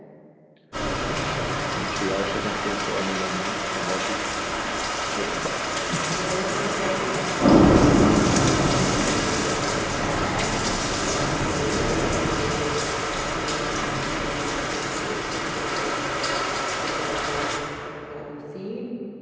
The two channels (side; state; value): both; identical; correlation 1.00